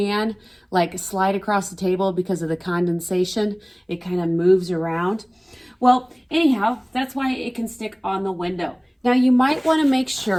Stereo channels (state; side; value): identical; both; correlation 1.00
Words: like slide across the table because of the condensation? It kind of moves around. Well, anyhow, that's why it can stick on the window. Now you might want to make